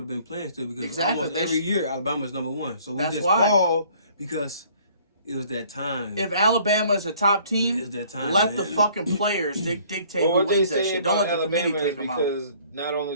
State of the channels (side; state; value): both; inverted; correlation -0.57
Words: been playing still because almost every year Alabama's number 1. So we just fall because it was that time. If Alabama is a top team, let the fucking players dictate who wins that shit. Don't let the committee take them out. Because not